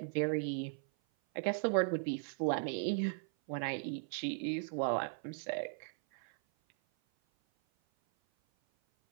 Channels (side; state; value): left; silent; 53 dB below the other